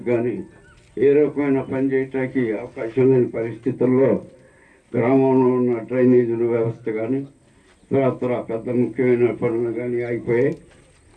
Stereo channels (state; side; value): identical; both; correlation 1.00